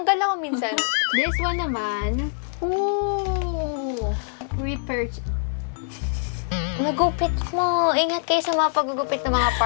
ako minsan. This one naman. Ooh! Repurchase. Nagupit mo. Ingat kayo sa mga paggugupit ng mga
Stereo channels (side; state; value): right; silent; 63 dB below the other